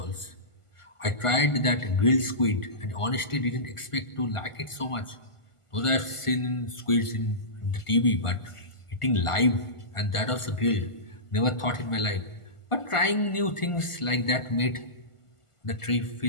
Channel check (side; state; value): right; late; 1.5 ms